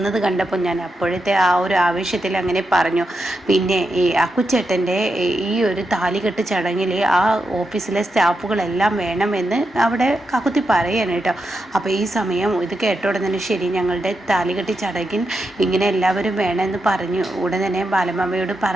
കണ്ടപ്പോൾ ഞാൻ അപ്പോഴത്തെ ആ ഒരു ആവേശത്തിൽ അങ്ങനെ പറഞ്ഞു. പിന്നെ ഈ അക്കുച്ചേട്ടൻ്റെ ഈ ഒരു താലികെട്ട് ചടങ്ങിൽ ആ ഓഫീസിലെ സ്റ്റാഫുകളെല്ലാം വേണമെന്ന് അവിടെ കാക്കുത്തി പറയാണ് കേട്ടോ. അപ്പോൾ ഈ സമയം ഇത് കേട്ട ഉടനെ തന്നെ ശരി, ഞങ്ങളുടെ താലികെട്ട് ചടങ്ങിൽ ഇങ്ങനെ എല്ലാവരും വേണമെന്ന് പറഞ്ഞു. ഉടൻ തന്നെ ബാലമാമയോട്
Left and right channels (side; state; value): both; normal; correlation 0.86